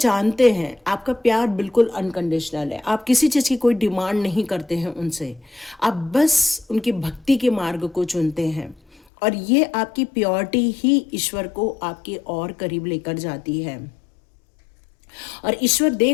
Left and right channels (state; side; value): drops out; right; at 9.0 s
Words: हैं आपका प्यार बिल्कुल अनकंडीशनल है। आप किसी चीज़ की कोई डिमांड नहीं करते हैं उनसे, आप बस उनकी भक्ति के मार्ग को चुनते हैं। और ये आपकी प्योरिटी ही ईश्वर को आपके और करीब लेकर जाती है। और ईश्वर